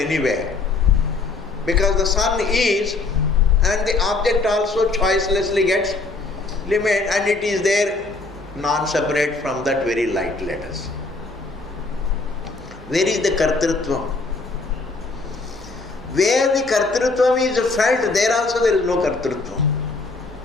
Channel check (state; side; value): quieter; right; 3.6 dB